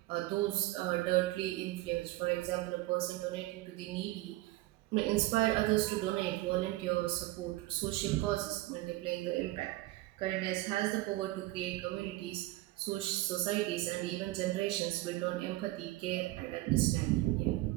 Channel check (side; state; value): left; quieter; 18.1 dB